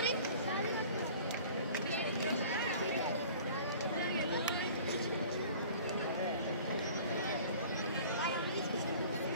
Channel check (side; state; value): both; inverted; correlation -0.46